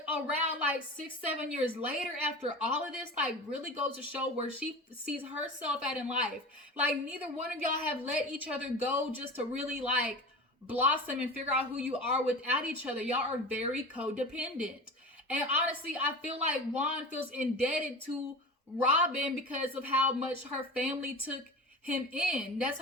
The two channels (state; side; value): normal; both; correlation 0.33